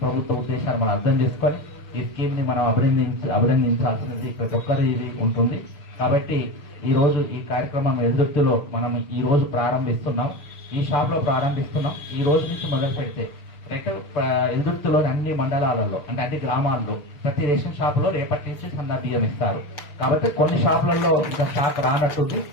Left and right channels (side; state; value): right; late; 6.8 ms